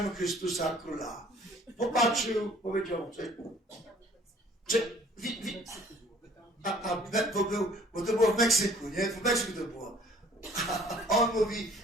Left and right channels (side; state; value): both; normal; correlation 0.55